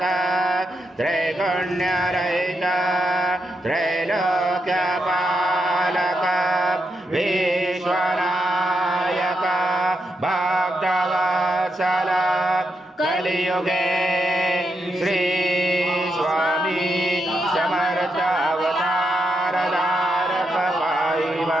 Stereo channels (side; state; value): both; normal; correlation 0.83